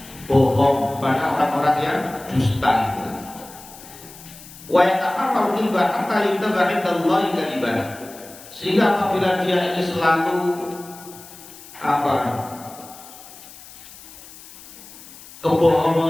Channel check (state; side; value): noise; left; hiss, 18 dB below the sound